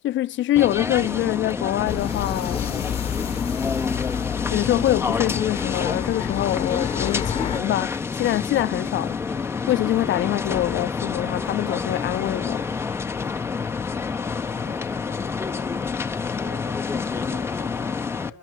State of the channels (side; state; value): right; quieter; 8.4 dB